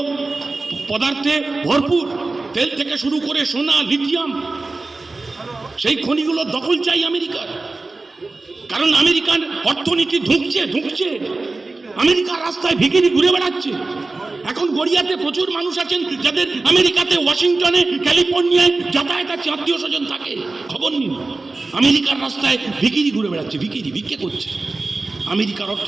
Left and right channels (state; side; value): quieter; left; 3.4 dB